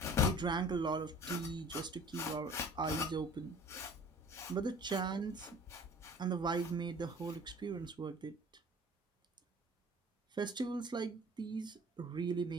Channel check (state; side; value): normal; both; correlation 0.46